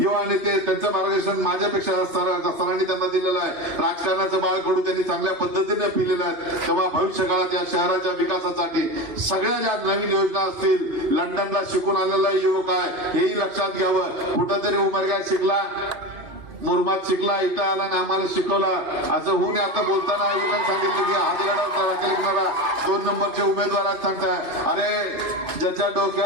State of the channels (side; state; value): left; late; 3.3 ms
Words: नेते त्यांचं मार्गदर्शन माझ्यापेक्षा सरांनी त्यांना दिलेलं आहे. राजकारणाचं बाळकडू त्यांनी चांगल्या पद्धतीने पिलेलं आहे. तेव्हा भविष्य काळात या शहराच्या विकासासाठी सगळ्या ज्या नवीन योजना असतील, लंडनला शिकून आलेला युवक आहे हेही लक्षात घ्यावं. कुठंतरी उमरग्यात शिकला, मुरमात शिकला, इथं आला आणि आम्हाला शिकवला असं होऊन आता बोलताना आयोगाने सांगितलं की हातगडा 2 नंबरचे उमेदवार आहेत. सांगताय अरे ज्याच्या